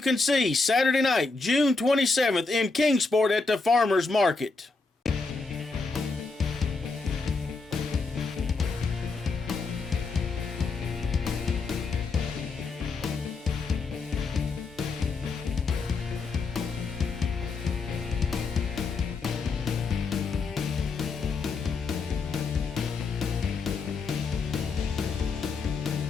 see Saturday night, June 27th in Kingsport at the Farmers Market.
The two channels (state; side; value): quieter; right; 4.1 dB